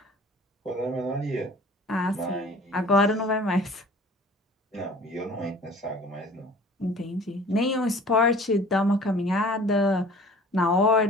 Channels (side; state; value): both; normal; correlation 0.47